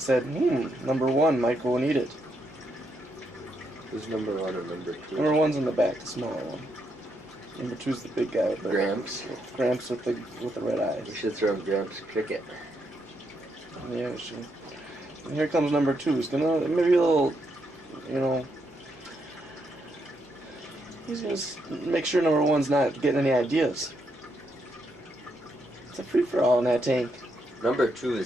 number 1 might go and eat it. Who's number 1 or number 2? Number 1's in the back, the smaller one. Number 2's the big guy with the Gramps. Gramps with the red eyes. We should throw Gramps cricket. Yeah, we should. And here comes number 2. He's gonna maybe a little, he's gonna make sure number 1's not getting any ideas. It's a free for all in that tank. Number 2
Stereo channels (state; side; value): normal; both; correlation 0.79